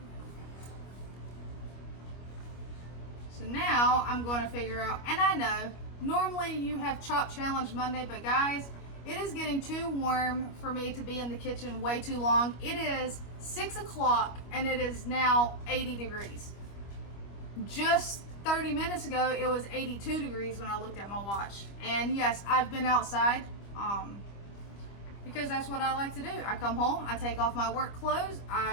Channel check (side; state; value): right; late; 25 ms